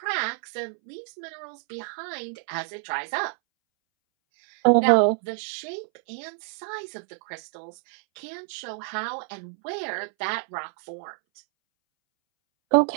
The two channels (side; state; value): left; silent; 60 dB below the other